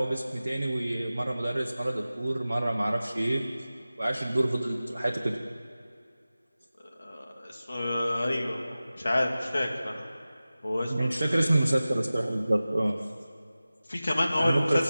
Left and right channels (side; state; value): both; inverted; correlation -0.96